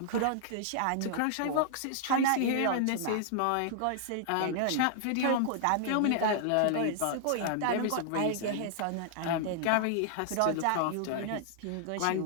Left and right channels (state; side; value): different; both; correlation -0.01